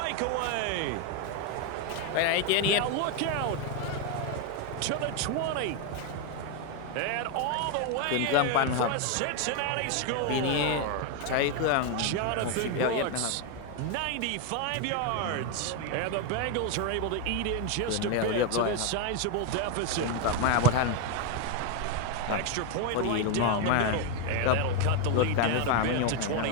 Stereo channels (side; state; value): both; different; correlation 0.01